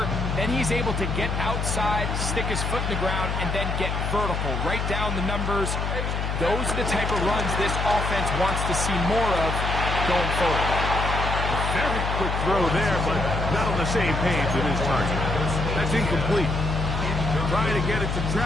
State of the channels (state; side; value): noise; left; hum, 1 dB below the sound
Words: Then he's able to get outside, stick his foot in the ground, and then get vertical. Right down the numbers. Those are the type of runs this offense wants to see more of going forward. A very quick throw there, but not on the same page with his target. That's incomplete. Trying to get it to